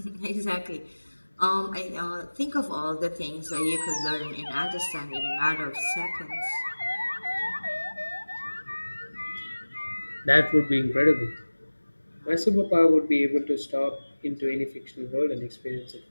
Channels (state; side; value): inverted; both; correlation -1.00